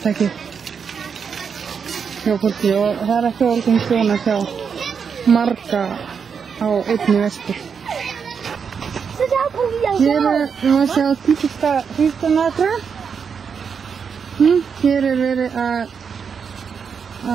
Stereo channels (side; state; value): left; quieter; 6.4 dB